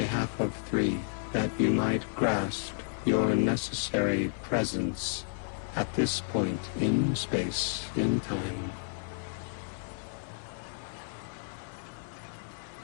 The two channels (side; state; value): right; silent; 56 dB below the other